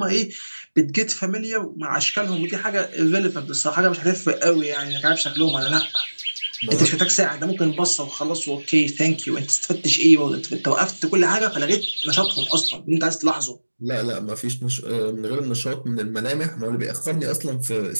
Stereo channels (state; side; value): inverted; both; correlation -1.00